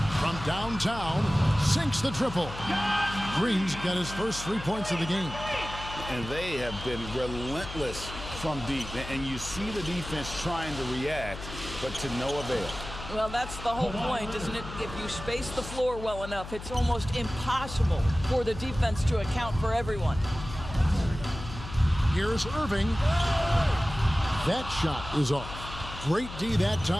From downtown, sinks the triple. Green's got his first 3 points of the game. And they have been relentless from deep. And you see the defense trying to react, but to no avail. Well, that's the whole point, isn't it? If you space the floor well enough, it's almost impossible for the defense to account for everyone. Here's Irving. That shot is off. Great D that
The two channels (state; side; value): noise; left; hum, 11 dB below the sound